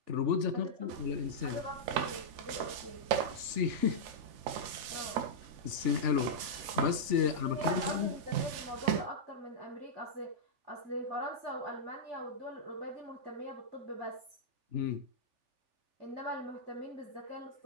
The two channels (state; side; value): late; left; 3.4 ms